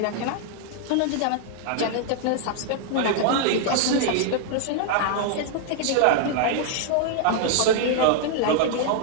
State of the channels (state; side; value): different; both; correlation 0.00